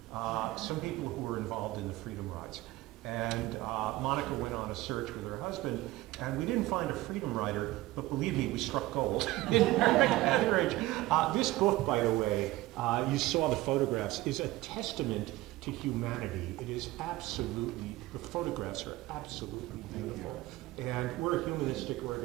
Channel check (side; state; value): left; quieter; 18.0 dB